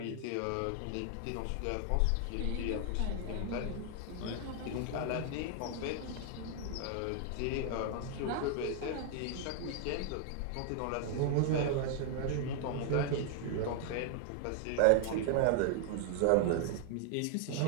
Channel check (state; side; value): different; both; correlation 0.00